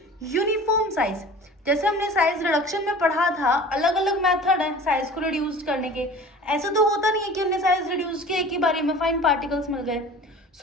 uniform size. जैसे हमने साइज रिडक्शन में पढ़ा था, अलग अलग मेथड है साइज को रिड्यूस करने के। ऐसा तो होता नहीं है कि हमने साइज रिड्यूस किया एक ही बारी में फाइन पार्टिकल्स मिल गए।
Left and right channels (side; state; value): both; normal; correlation 0.41